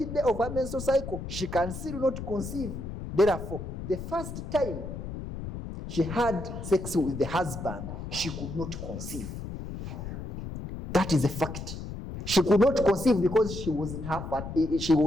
day of her menstrual cycle. She can still not conceive. Therefore, the first time she had sex with the husband, she could not conceive. That is a fact. She could not conceive because she was in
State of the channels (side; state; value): left; noise; rumble, 8 dB below the sound